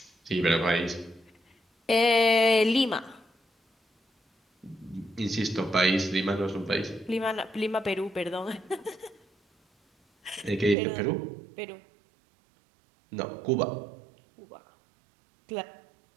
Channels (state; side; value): drops out; left; at 10.8 s